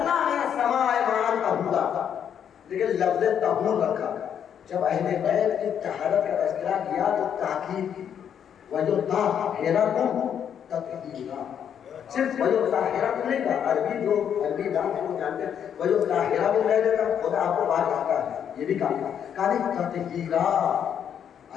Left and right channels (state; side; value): quieter; right; 8.6 dB